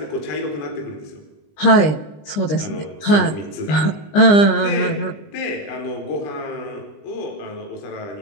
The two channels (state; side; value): late; right; 20 ms